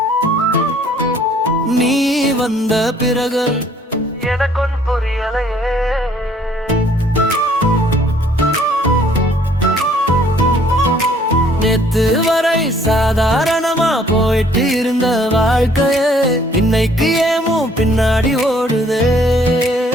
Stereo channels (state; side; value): normal; both; correlation 0.60